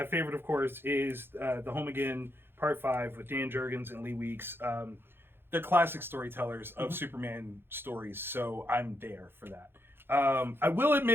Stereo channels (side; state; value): left; late; 0.10 ms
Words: favorite, of course, is The Home Again Part 5 with Dan Jurgens and Lee Weeks. They're classic storytellers of Superman stories, so I'm there for that. I will